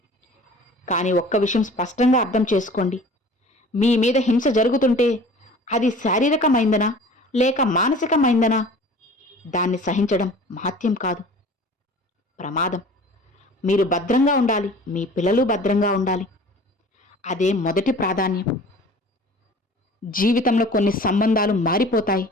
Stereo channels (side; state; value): both; normal; correlation 0.45